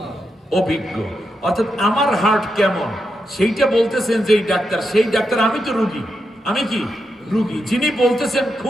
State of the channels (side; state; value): both; normal; correlation 0.85